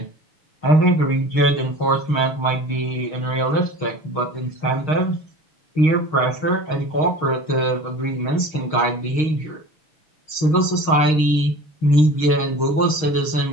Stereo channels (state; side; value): late; right; 6.4 ms